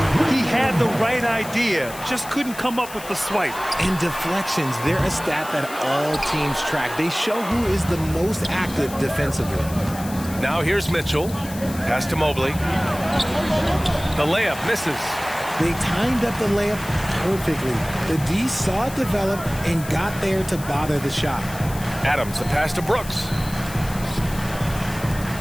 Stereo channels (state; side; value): noise; left; hiss, 14 dB below the sound